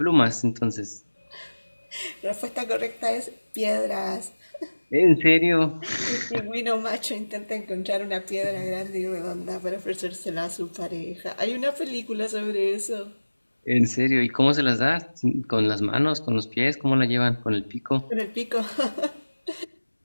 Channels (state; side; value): inverted; both; correlation -1.00